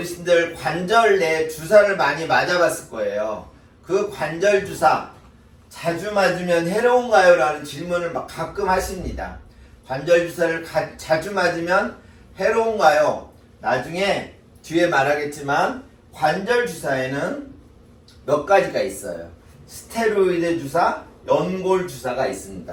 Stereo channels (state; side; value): identical; both; correlation 1.00